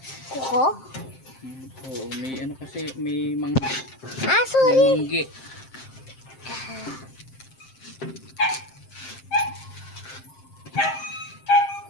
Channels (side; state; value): right; late; 7.6 ms